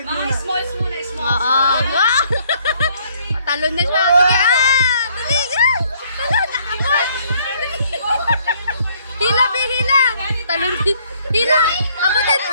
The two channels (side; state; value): both; inverted; correlation -0.65